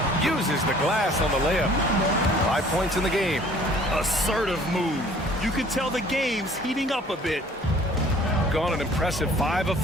Uses the glass on the layup. 5 points in the game. Assertive move. You can tell the game's heating up a bit. Gone an impressive 5 of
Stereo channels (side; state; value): both; normal; correlation 0.53